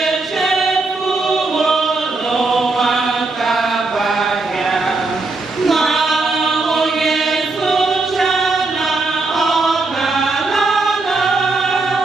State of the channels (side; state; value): left; quieter; 3.5 dB